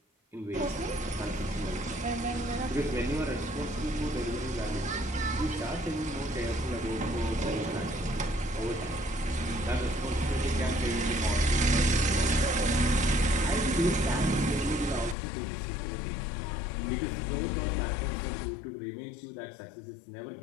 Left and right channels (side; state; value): right; drops out; at 15.2 s